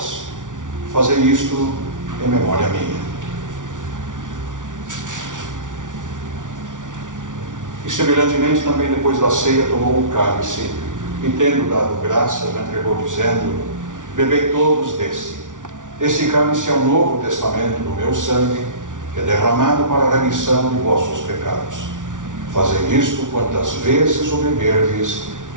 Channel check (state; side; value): late; left; 0.87 ms